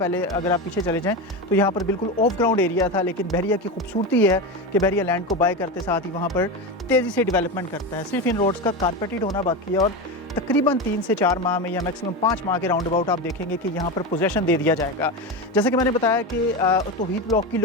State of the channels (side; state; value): both; normal; correlation 0.19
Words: अगर आप पीछे चले जाएं तो यहाँ पर बिल्कुल ऑफ ग्राउंड एरिया था, लेकिन बहरिया की खूबसूरती है कि बहरिया लैंड को बाय करते साथ ही वहाँ पर तेज़ी से डेवलपमेंट करता है। सिर्फ इन रोड्स का कारपेटेड होना बाकी है और तकरीबन 3 से 4 माह में या मैक्सिमम 5 माह के राउंड अबाउट आप देखेंगे कि यहाँ पर पोजेसन दे दिया जाएगा। जैसे कि मैंने बताया कि तौहीद ब्लॉक की